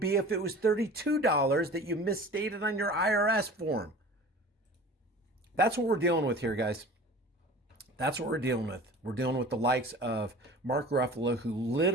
if it was $32 that you misstated on your IRS form. That's what we're dealing with here, guys. That's what we're dealing with. We're dealing with the likes of Mark Ruffalo, who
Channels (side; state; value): both; normal; correlation 0.41